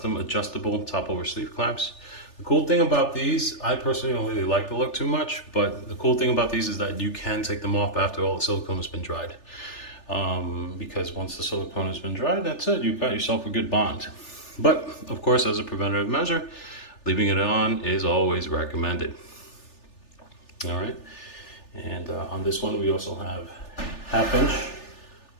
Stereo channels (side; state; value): right; late; 3.4 ms